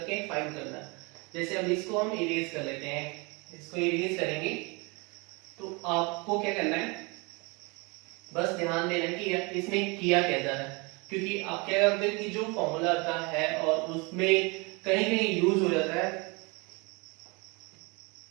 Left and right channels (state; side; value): quieter; left; 28.8 dB